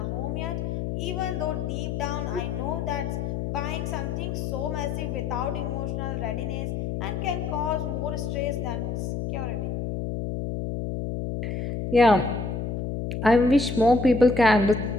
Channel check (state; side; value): noise; left; hum, 3 dB below the sound